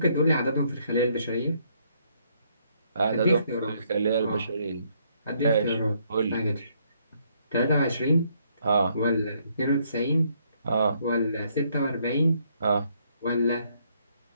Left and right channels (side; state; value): both; inverted; correlation -0.70